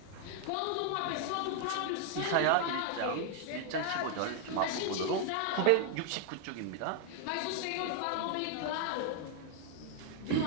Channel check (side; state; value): both; different; correlation 0.00